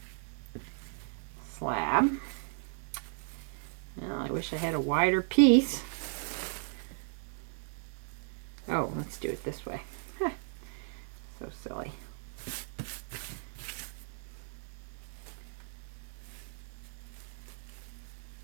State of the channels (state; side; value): silent; left; 54 dB below the other